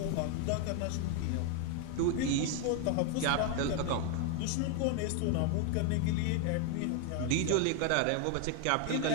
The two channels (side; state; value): both; different; correlation 0.01